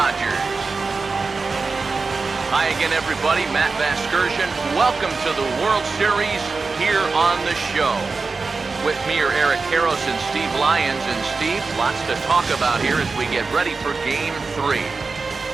Hi again, everybody. Matt Vasgersian. Welcome to the World Series here on the show. With me are Eric Karros and Steve Lyons. And Steve, lots to talk about here as we get ready for Game 3.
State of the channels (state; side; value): quieter; left; 4.2 dB